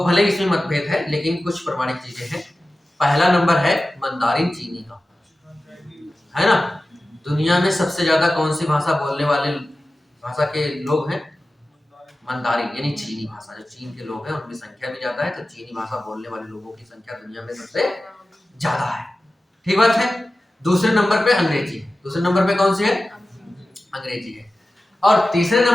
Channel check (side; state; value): both; normal; correlation 0.95